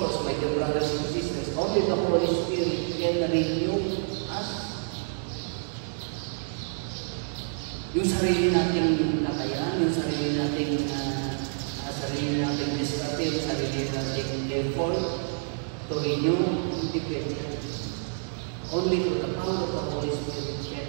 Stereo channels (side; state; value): left; silent; digital silence